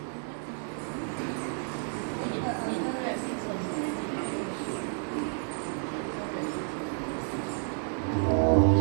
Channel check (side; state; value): left; silent; 57 dB below the other